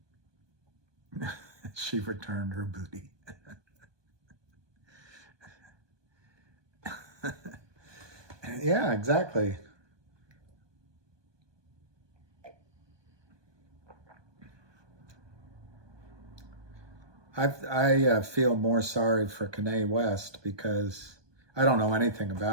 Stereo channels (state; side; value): late; left; 1.2 ms